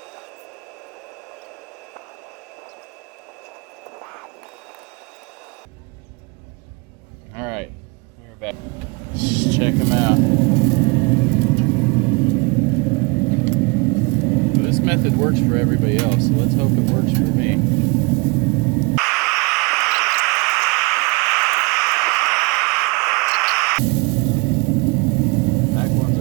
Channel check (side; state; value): left; quieter; 29.8 dB